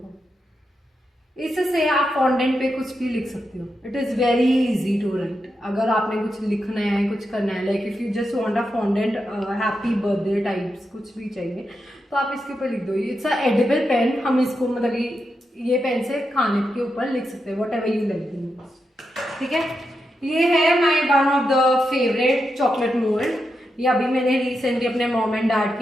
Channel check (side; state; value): both; normal; correlation 0.86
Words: इससे आप फॉन्डेंट पे कुछ भी लिख सकते हो. It is very easy to write. अगर आपने कुछ लिखना है, कुछ करना है, like if you just want a fondant happy birthday types कुछ भी चाहिए, तो आप इसके ऊपर लिख दो. It's a edible pen. हम इसको मतलब ये पेन से खाने के ऊपर लिख सकते हैं, वट एवर यू लाइक. ठीक है. ये है my one of the favourite chocolate mould. ये अभी मैंने रिसेंटली अपने मॉम एंड डैड